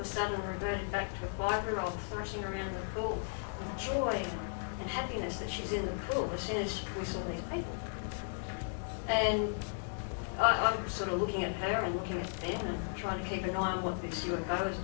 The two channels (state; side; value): silent; right; digital silence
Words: sudden reverted back to a 5-year-old thrashing around the pool with joy and happiness that she's in the pool as soon as we saw these people. And I was sort of looking at her and looking at them and trying to keep an eye on what this UFO was